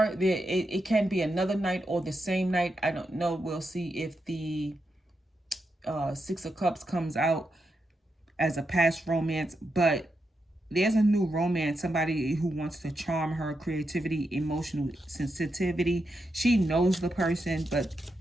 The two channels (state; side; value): normal; both; correlation 0.85